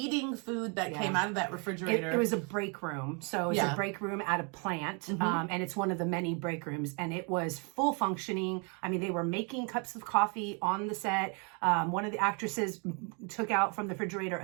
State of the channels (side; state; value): left; quieter; 34.8 dB